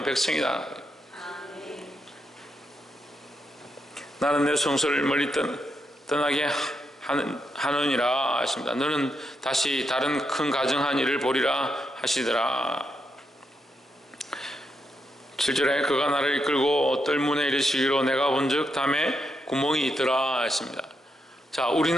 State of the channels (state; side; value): normal; both; correlation 0.82